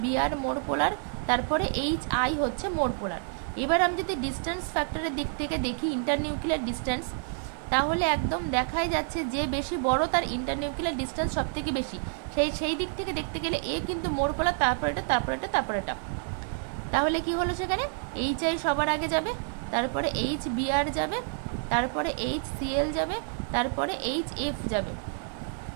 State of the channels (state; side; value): silent; left; 59 dB below the other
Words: মোর পোলার, তারপরে HI হচ্ছে মোর পোলার। এবার আমি যদি ডিস্টেন্স ফ্যাক্টরের দিক থেকে দেখি, ইন্টারনিউক্লিয়ার ডিস্টেন্স, তাহলে একদম দেখাই যাচ্ছে যে বেশি বড় তার ইন্টারনিউক্লিয়ার ডিস্টেন্স সব থেকে বেশি। সেই দিক থেকে দেখতে গেলে এ কিন্তু মোর পোলার, তারপর এটা। তাহলে কি হলো, সেখানে HI সবার আগে যাবে, তারপরে HBr যাবে, তারপরে HCl যাবে, তারপরে HF যাবে।